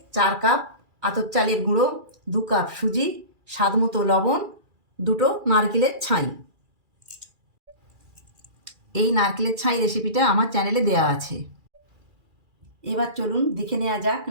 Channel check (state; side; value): late; left; 2.4 ms